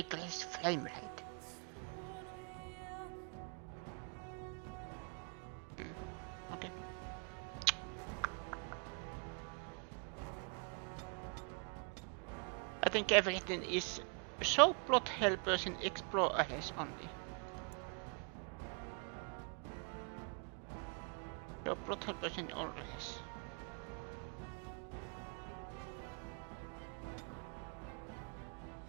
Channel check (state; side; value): quieter; left; 37.6 dB